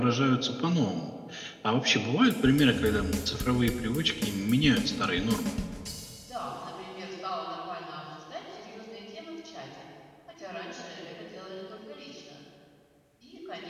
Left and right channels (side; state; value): both; identical; correlation 1.00